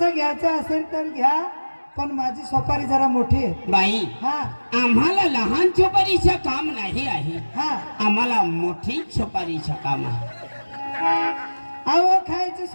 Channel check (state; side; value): inverted; both; correlation -1.00